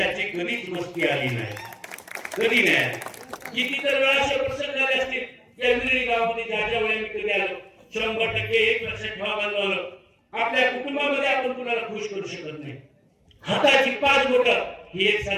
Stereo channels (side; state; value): both; identical; correlation 1.00